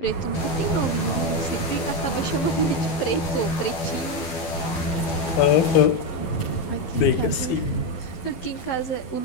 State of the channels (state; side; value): late; right; 12 ms